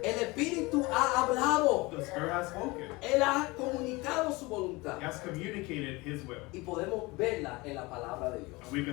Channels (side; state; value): right; quieter; 23.4 dB